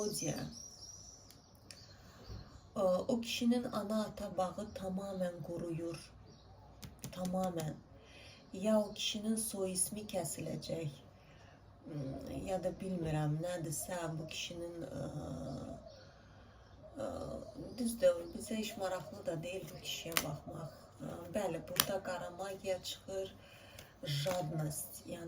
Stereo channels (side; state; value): both; identical; correlation 1.00